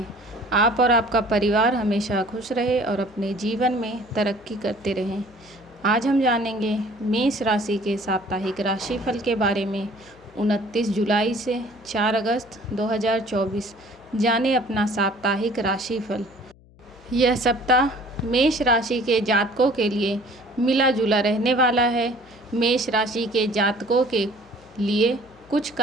आप और आपका परिवार हमेशा खुश रहे और अपने जीवन में तरक्की करते रहें। आज हम जानेंगे मेष राशि के साप्ताहिक राशिफल के बारे में। 29 जुलाई से 4 अगस्त 2024 जाने अपना साप्ताहिक राशिफल। यह सप्ताह मेष राशि के जातकों के लिए मिला जुला रहने वाला है। मेष राशि के जातकों के लिए कुछ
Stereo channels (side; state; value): left; noise; hum, 26 dB below the sound